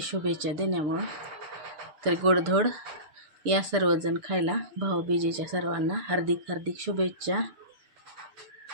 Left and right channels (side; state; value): left; late; 6.7 ms